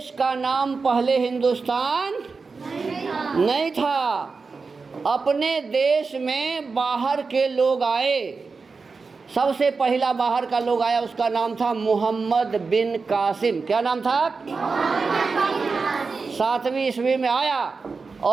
का नाम पहले हिंदुस्तान नहीं था, अपने देश में बाहर के लोग आए। सबसे पहला बाहर का लोग आया, उसका नाम था मोहम्मद बिन कासिम। क्या नाम था, 7वीं ईस्वी में आया।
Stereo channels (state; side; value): quieter; left; 4.5 dB